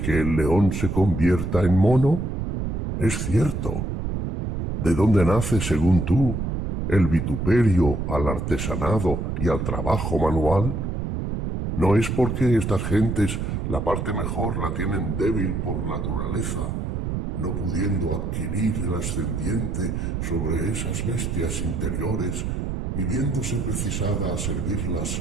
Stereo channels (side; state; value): right; noise; rumble, 3 dB below the sound